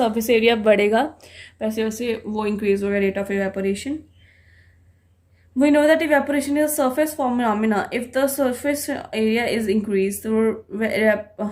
एरिया बढ़ेगा वैसे वैसे वो इंक्रीज होगा rate of evaporation. We know that evaporation is a surface phenomena. If the surface area is increased, the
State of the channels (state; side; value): identical; both; correlation 1.00